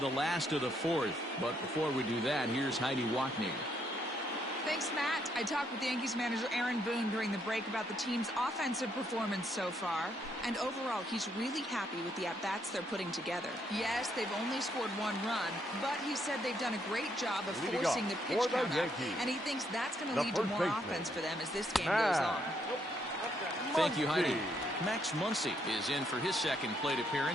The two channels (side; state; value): both; normal; correlation 0.73